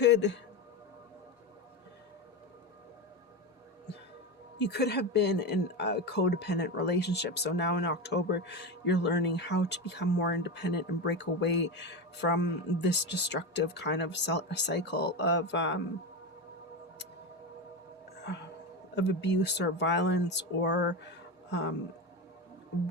You could have been in a codependent relationship. So now in October, you're learning how to become more independent and break away from this destructive kind of cycle of abuse or violence or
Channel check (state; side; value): normal; both; correlation 0.18